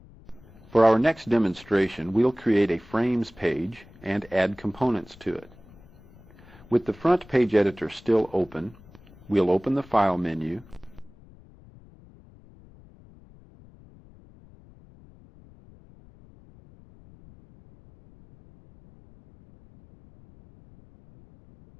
For our next demonstration, we'll create a frames page and add components to it. With the front page editor still open, we'll open the File menu,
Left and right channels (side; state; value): left; noise; rumble, 24 dB below the sound